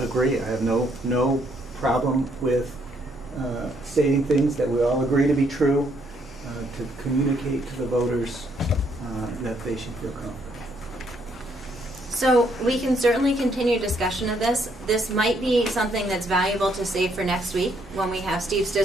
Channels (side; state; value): both; normal; correlation 0.71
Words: I have no problem with stating things that we all agree to be true, to communicate to the voters that they should feel confident. So we can certainly continue discussion of this. This might be something that's valuable to save for next week when we have Steve